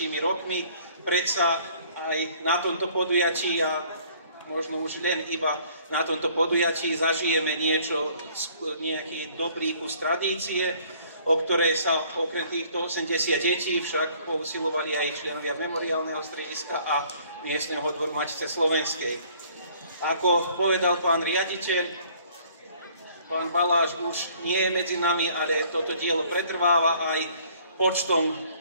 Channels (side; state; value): both; inverted; correlation -0.58